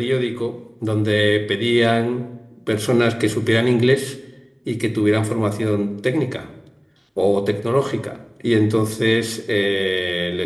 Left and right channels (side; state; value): both; identical; correlation 1.00